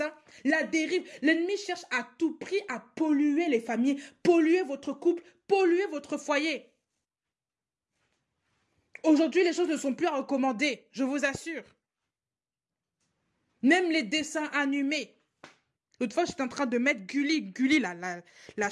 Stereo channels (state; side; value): identical; both; correlation 1.00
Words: La dérive. L'ennemi cherche à tout prix à polluer les familles, polluer votre couple, polluer votre foyer. Aujourd'hui, les choses ne sont plus à recommander, je vous assure. Même les dessins animés. L'autre fois, j'étais en train de mettre Gulli. Gulli, la